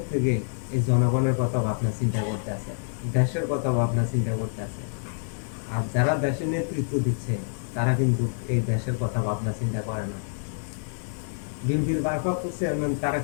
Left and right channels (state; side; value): silent; right; digital silence